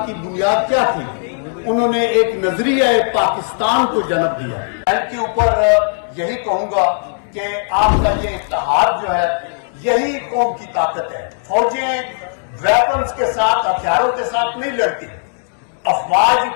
کی بنیاد کیا تھی؟ انہوں نے ایک نظریہ پاکستان کو جنم دیا۔ ان کے اوپر یہی کہوں گا کہ آپ کا یہ اتحاد جو ہے یہی قوم کی طاقت ہے۔ فوجیں ویپنز کے ساتھ، ہتھیاروں کے ساتھ نہیں لڑتی، افواج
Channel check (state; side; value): silent; right; digital silence